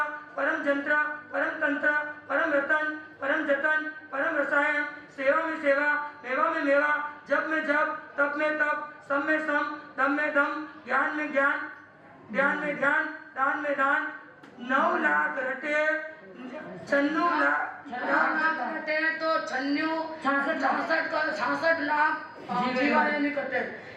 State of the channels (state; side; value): identical; both; correlation 1.00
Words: परम जंत्र परम तंत्र परम रतन परम जतन परम रसायन सेवा में सेवा मेवा में मेवा जप में जप तप में तप सम में सम दम में दम ज्ञान में ज्ञान ध्यान में ध्यान दान में दान 9 लाख रटे 96 लाख कटे तो 66 लाख जीवाने नहीं कटे